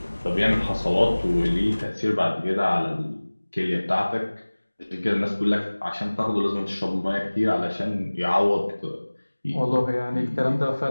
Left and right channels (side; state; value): both; inverted; correlation -1.00